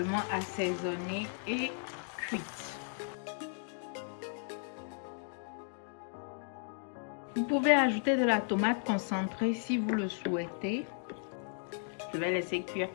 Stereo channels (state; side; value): silent; right; 54 dB below the other